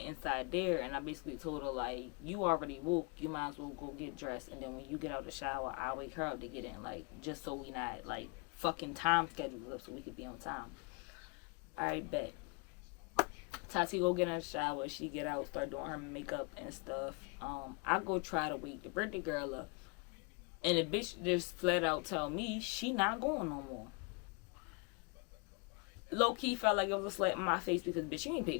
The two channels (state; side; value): quieter; right; 32.8 dB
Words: inside there, and I basically told her, like, you already woke, you might as well go get dressed, and then when you get out the shower, I'll wake her up to get in, like, just so we not, like, fucking time schedules up so we could be on time. Alright, bet. Tati go get in the shower, she get out, start doing her makeup and stuff. I go try to wake the birthday girl up. And the bitch just flat out tell me she not going no more. Low key felt like it was a slap in my face because bitch, you ain't